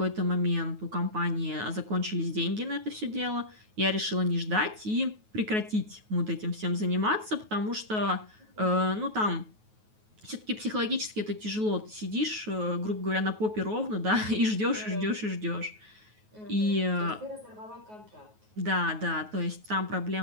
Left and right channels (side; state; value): left; late; 9.3 ms